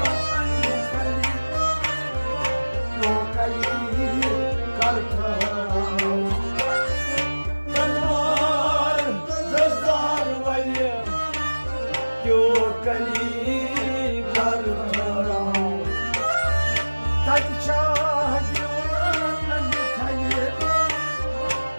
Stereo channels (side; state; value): both; inverted; correlation -1.00